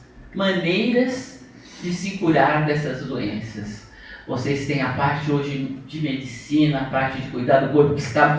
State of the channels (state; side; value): identical; both; correlation 1.00